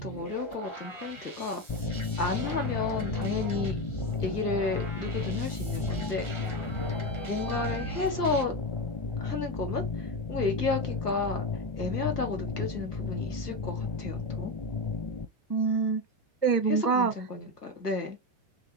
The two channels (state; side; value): late; right; 1.3 ms